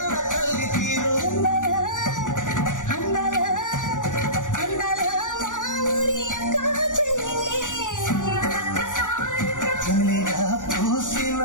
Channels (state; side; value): late; right; 0.87 ms